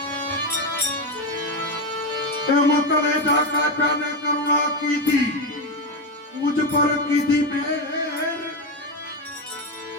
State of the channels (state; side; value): normal; both; correlation 0.12